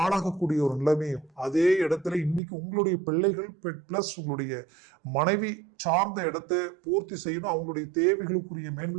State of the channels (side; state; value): left; drops out; at 2.4 s